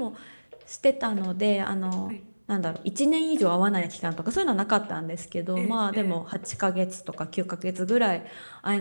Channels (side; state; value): both; inverted; correlation -1.00